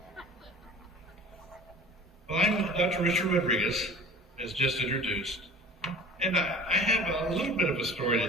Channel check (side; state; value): both; normal; correlation 0.43